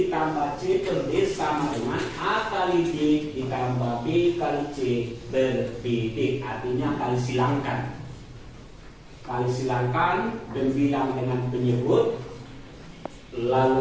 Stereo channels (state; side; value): identical; both; correlation 1.00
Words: C per D sama dengan A kali D ditambah B kali C per BD. Artinya kali silangkan. Kali silangkan pembilang dengan penyebut,